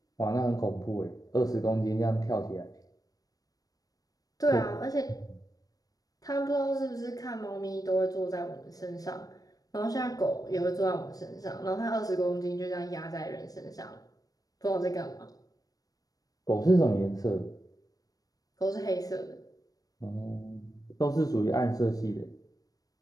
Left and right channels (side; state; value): right; late; 0.18 ms